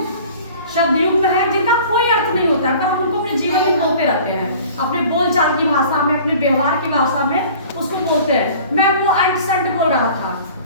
शब्द युग में है जिनका कोई अर्थ नहीं होता है, पर हम उनको अपने जीवन में बोलते रहते हैं, अपने बोलचाल की भाषा में, अपने व्यवहार की भाषा में उसको बोलते हैं। मैं वो अंट संट बोल रहा था,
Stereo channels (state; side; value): inverted; both; correlation -0.46